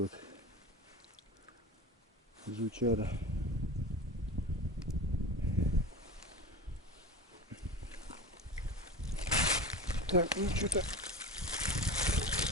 вот жучара. Так, ну что-то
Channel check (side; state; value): both; normal; correlation 0.31